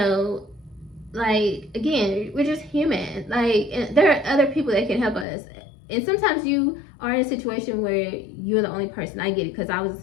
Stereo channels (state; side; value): drops out; right; at 5.2 s